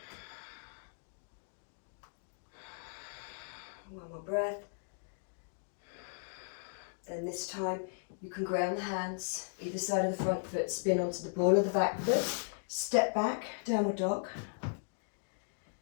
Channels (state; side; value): silent; right; digital silence